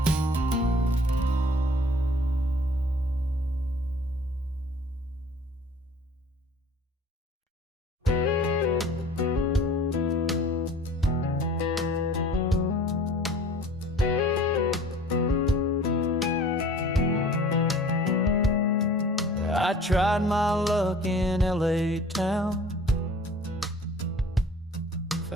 I tried my luck in LA town.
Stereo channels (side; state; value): both; normal; correlation 0.48